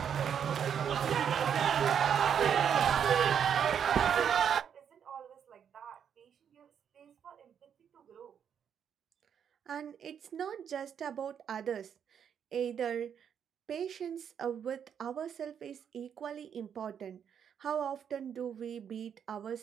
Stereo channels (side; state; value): left; quieter; 8.1 dB